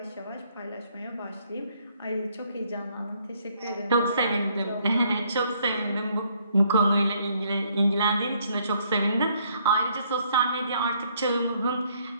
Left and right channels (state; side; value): inverted; both; correlation -0.68